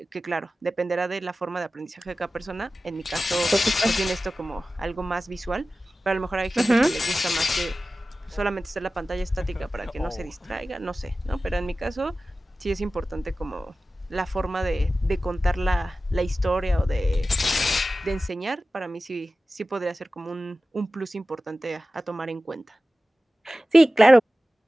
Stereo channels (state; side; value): normal; both; correlation 0.95